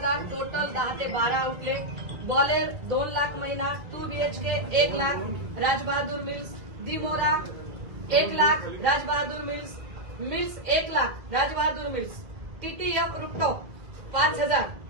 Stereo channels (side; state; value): left; late; 1.8 ms